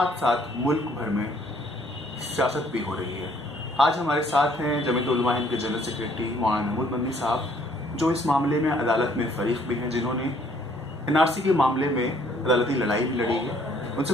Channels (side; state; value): both; normal; correlation 0.62